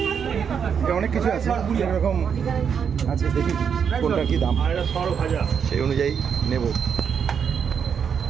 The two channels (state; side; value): quieter; left; 7.2 dB